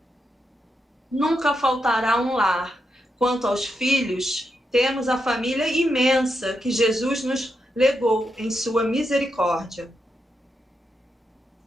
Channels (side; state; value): both; normal; correlation 0.84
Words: nunca faltará um lar. Quanto aos filhos, temos a família imensa que Jesus nos legou em sua misericórdia.